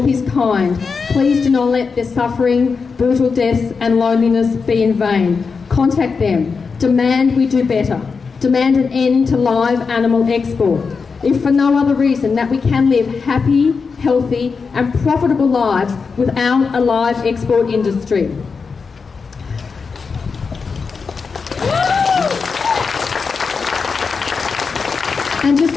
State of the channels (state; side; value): quieter; right; 5.1 dB